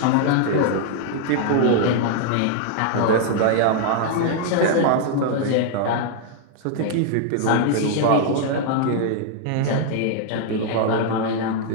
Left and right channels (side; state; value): both; different; correlation 0.00